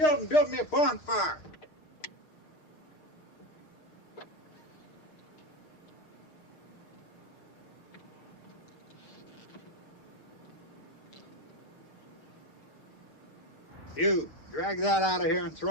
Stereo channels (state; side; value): late; right; 6.5 ms